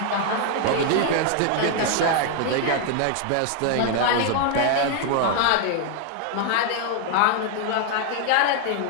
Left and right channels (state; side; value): different; both; correlation 0.00